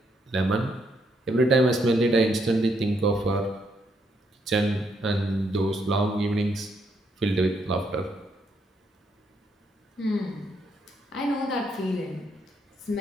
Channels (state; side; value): normal; both; correlation 0.75